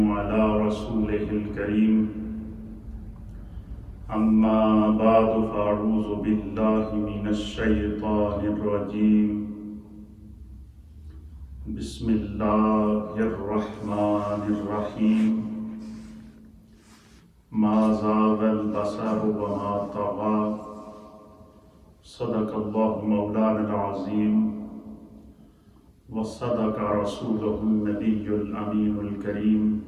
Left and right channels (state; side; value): identical; both; correlation 1.00